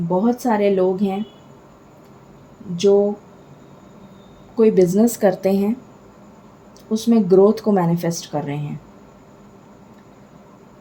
सारे लोग हैं जो कोई बिज़नेस करते हैं, उसमें ग्रोथ को मैनिफेस्ट कर रहे हैं।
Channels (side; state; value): both; identical; correlation 1.00